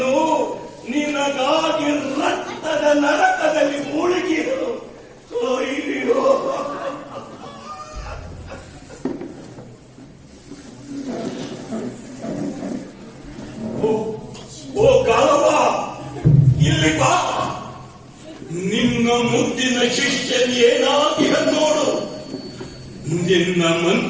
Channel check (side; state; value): both; identical; correlation 1.00